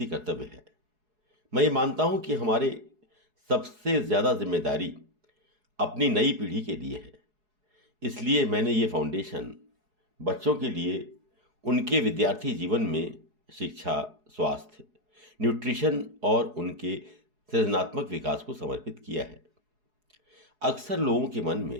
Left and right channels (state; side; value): late; left; 4.7 ms